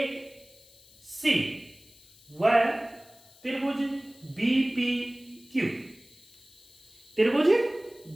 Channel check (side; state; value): left; noise; hiss, 26 dB below the sound